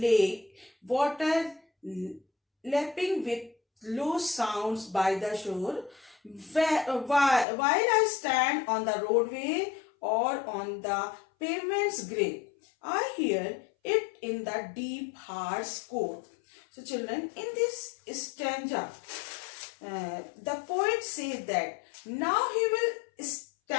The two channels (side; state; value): right; drops out; at 7.5 s